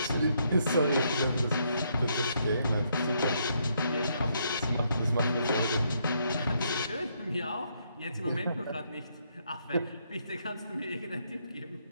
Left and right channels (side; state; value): both; inverted; correlation -0.74